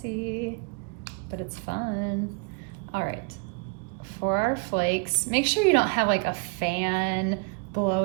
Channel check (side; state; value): left; quieter; 34.3 dB